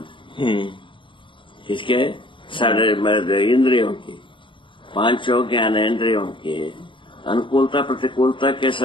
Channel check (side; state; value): right; late; 0.24 ms